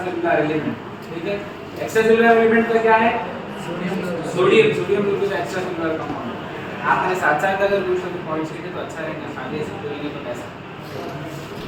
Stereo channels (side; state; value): both; identical; correlation 1.00